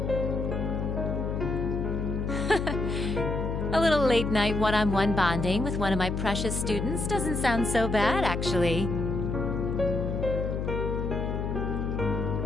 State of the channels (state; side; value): noise; left; hum, 2 dB below the sound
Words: A little late night one-on-one bonding with one of my precious students doesn't sound so bad, actually.